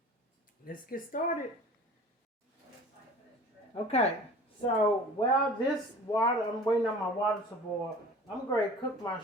let's get started. Okay, so while I'm waiting on my water to boil, I'm going to cook my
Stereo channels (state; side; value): normal; both; correlation 0.43